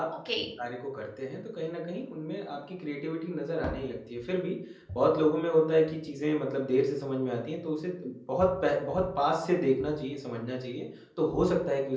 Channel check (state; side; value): identical; both; correlation 1.00